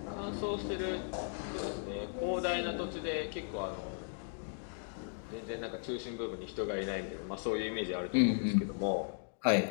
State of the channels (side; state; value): right; silent; digital silence